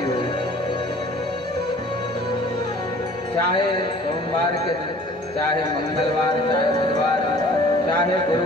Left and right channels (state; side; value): normal; both; correlation 0.50